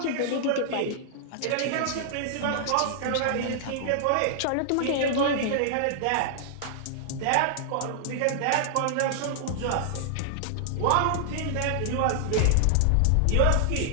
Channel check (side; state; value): both; different; correlation -0.01